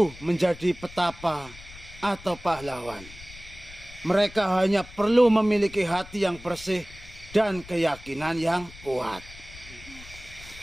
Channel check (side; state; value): left; noise; rumble, 18 dB below the sound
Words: menjadi petapa atau pahlawan. Mereka hanya perlu memiliki hati yang bersih dan keyakinan yang kuat.